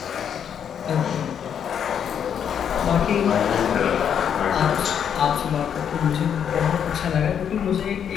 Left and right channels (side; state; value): right; quieter; 8.3 dB